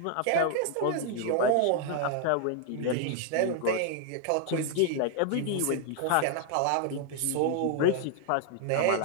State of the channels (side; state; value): both; different; correlation 0.00